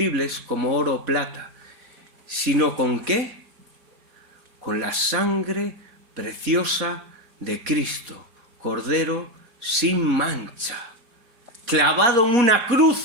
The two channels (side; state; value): left; late; 4.1 ms